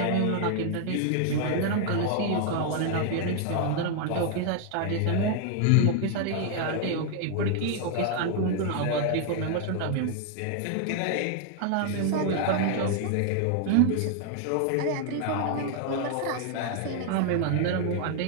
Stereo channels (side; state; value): both; different; correlation 0.00